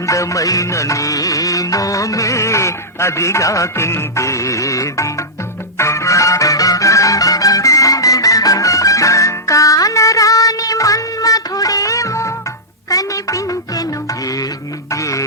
నీ మోమే అదిగాకిందేది కానరాని మన్మధుడేమో కనిపించెను ఏది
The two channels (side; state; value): both; normal; correlation -0.11